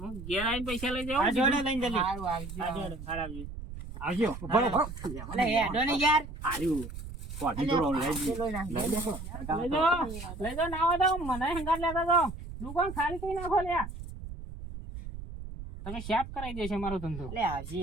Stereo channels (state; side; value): noise; right; rumble, 10 dB below the sound